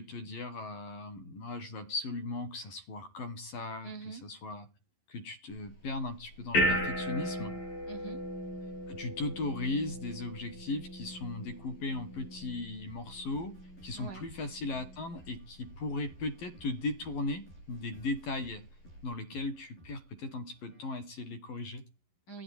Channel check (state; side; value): late; right; 11 ms